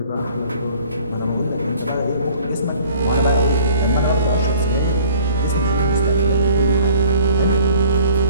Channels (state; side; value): inverted; both; correlation -0.51